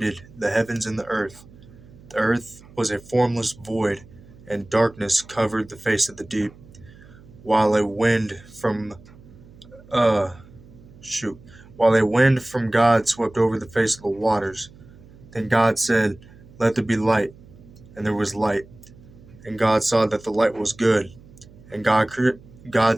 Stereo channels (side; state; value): right; noise; hum, 22 dB below the sound